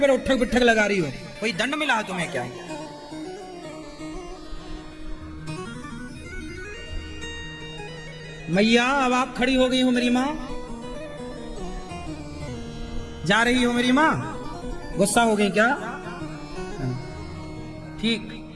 उठक बिठक लगा रही हो? कोई दंड मिला है तुम्हें क्या? मैया अब आप खड़ी हो गई हो मेरी माँ, जा रही हो मेरी माँ, गुस्सा हो गई क्या? ठीक,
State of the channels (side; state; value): both; identical; correlation 1.00